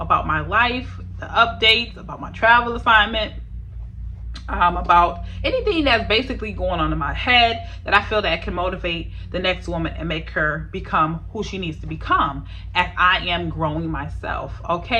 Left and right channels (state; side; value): identical; both; correlation 1.00